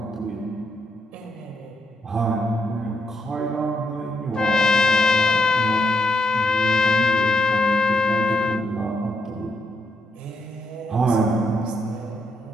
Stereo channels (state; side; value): normal; both; correlation 0.79